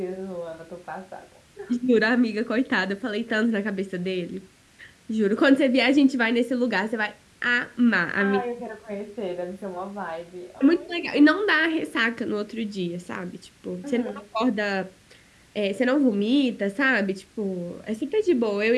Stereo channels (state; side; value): identical; both; correlation 1.00